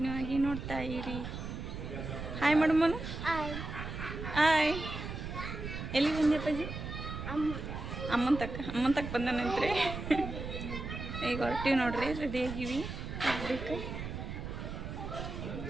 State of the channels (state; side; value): noise; right; rumble, 7 dB below the sound